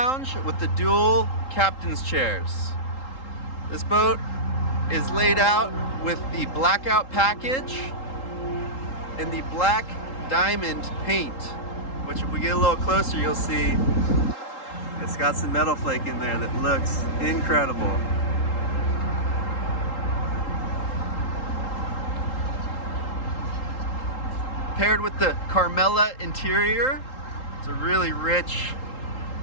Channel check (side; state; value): right; late; 3.8 ms